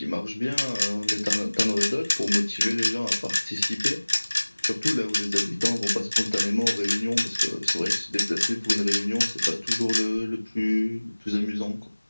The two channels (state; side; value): inverted; both; correlation -1.00